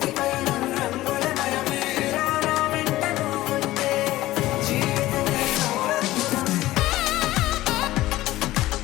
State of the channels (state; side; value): quieter; right; 16.4 dB